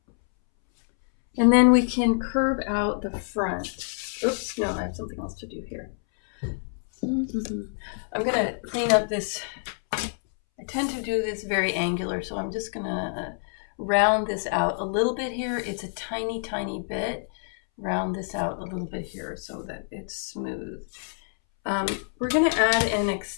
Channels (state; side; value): silent; right; 60 dB below the other